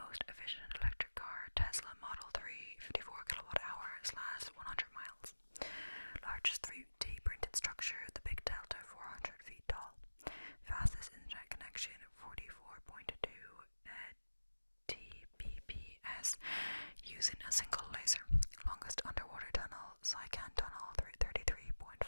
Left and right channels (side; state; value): both; inverted; correlation -1.00